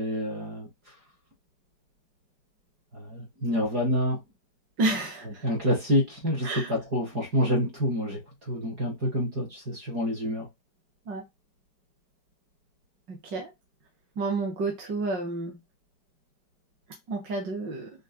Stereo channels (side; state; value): left; late; 4.8 ms